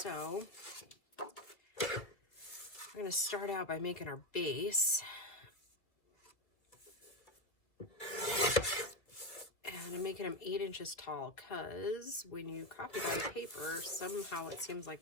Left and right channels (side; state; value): right; late; 2.3 ms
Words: we're going to start out by making our base. And I'm making them 8 inches tall because when you copy bind paper, somehow it seems